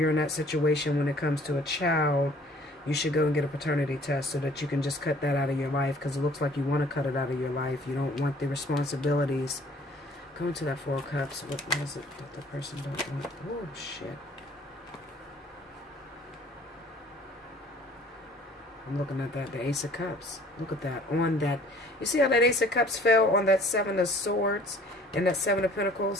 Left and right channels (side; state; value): both; normal; correlation 0.54